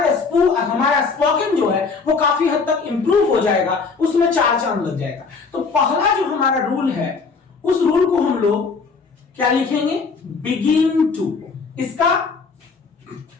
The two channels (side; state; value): right; quieter; 4.8 dB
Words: स्पोकन जो है वो काफी हद तक इंप्रूव हो जाएगा, उसमें चार चांद लग जाएगा। तो पहला जो हमारा रूल है, उस रूल को हम लोग क्या लिखेंगे? Begin to. इसका